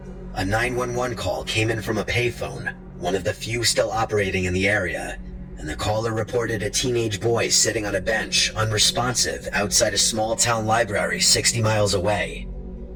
A 911 call came in from a payphone, one of the few still operating in the area, and the caller reported a teenage boy sitting on a bench, unresponsive, outside a small-town library 60 miles away.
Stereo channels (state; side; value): identical; both; correlation 1.00